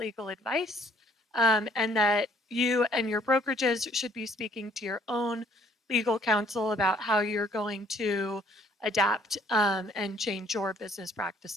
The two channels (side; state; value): both; normal; correlation 0.62